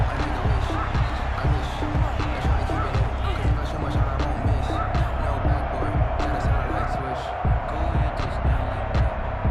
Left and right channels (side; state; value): both; identical; correlation 1.00